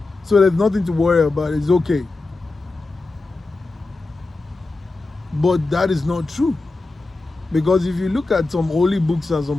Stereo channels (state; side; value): quieter; right; 3.3 dB